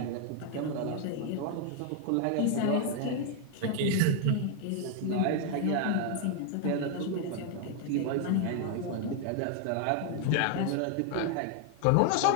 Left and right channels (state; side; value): different; both; correlation 0.00